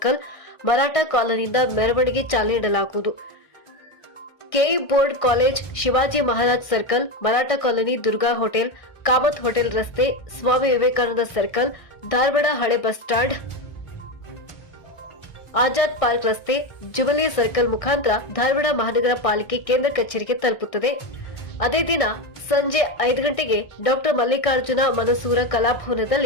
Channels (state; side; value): late; right; 1.6 ms